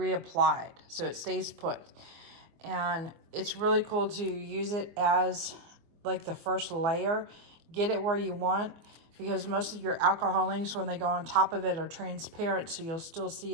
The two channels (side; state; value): left; late; 24 ms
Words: so it stays put. And it's really cool to use it as like the first layer. Get it where you want, because most of your alcohol inks, when they go on top of it, are transparent, so you'll still see